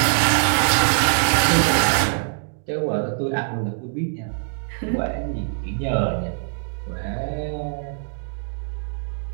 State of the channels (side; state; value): left; silent; digital silence